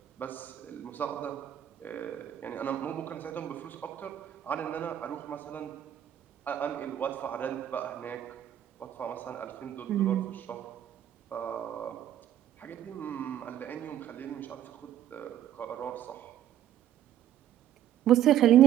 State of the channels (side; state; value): left; quieter; 11.4 dB